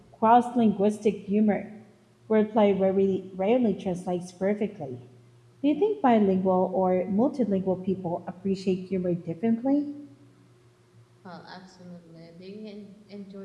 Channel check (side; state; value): both; identical; correlation 1.00